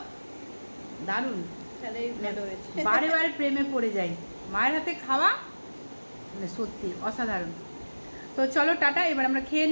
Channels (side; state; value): both; inverted; correlation -1.00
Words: দারুণ। তাহলেই ভালো হয়েছে। বারে বারে প্রেমে পড়ে যাই মায়ের হাতে খাওয়া, মানে সত্যি অসাধারণ। তো চলো টাটা, এবার আমরা খেয়ে